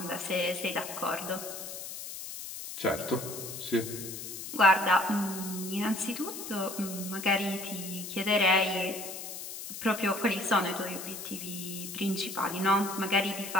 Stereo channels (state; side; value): noise; left; hiss, 9 dB below the sound